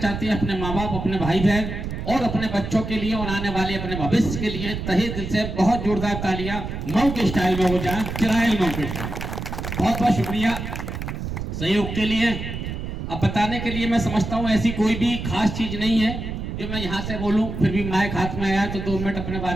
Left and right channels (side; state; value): right; noise; rumble, 6 dB below the sound